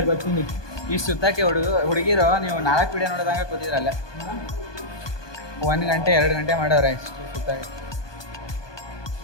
ಬರ್ತೀನಿ ಈ ಸುತ್ತಕ್ಕೆ ಹುಡುಗಿರು ನೀವು 4 ವಿಡಿಯೋ ನೋಡಿದಂಗೆ ಕೂತಿದ್ರಲ್ಲ 1 ಗಂಟೆ 2 ಗಂಟೆ ಮಾಡೋರೆ ಇಷ್ಟು ಸುತ್ತಕ್ಕೆ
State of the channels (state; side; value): late; right; 1.2 ms